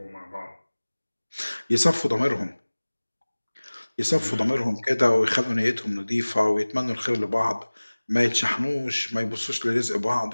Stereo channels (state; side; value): inverted; both; correlation -1.00